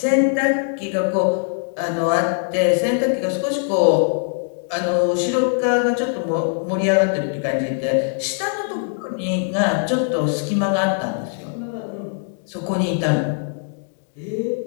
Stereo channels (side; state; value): right; silent; digital silence